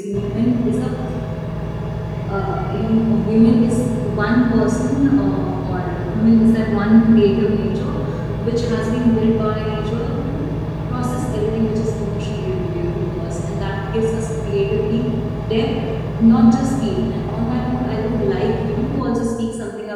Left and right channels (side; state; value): both; identical; correlation 1.00